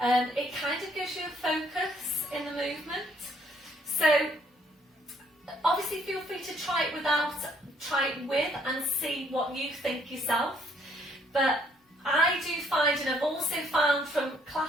It kind of gives you a focus in the movement. So obviously feel free to try it with and see what you think yourself. But I do find, and I've also found from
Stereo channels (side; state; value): both; normal; correlation 0.66